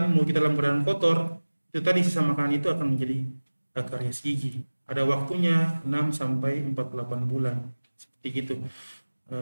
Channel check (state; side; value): inverted; both; correlation -1.00